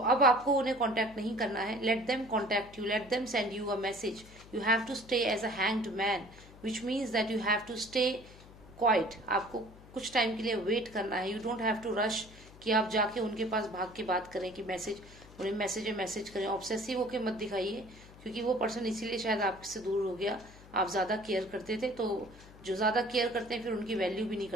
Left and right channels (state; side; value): noise; left; hum, 20 dB below the sound